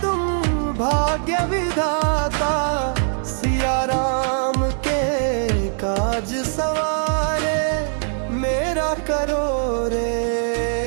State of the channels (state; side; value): silent; left; digital silence